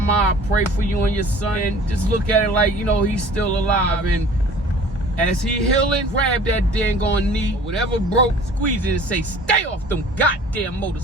I pray for you and your son. And just look at it like, you know, he's still alive. And as he healing, grab that dang on knee, whatever broke, squeeze it and say, stay off them goddamn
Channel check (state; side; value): normal; both; correlation 0.48